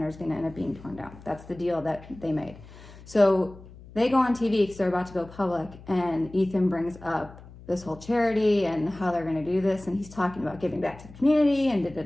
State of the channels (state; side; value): noise; left; hum, 19 dB below the sound